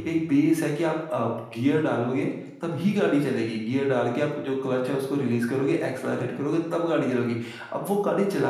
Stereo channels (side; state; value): both; identical; correlation 1.00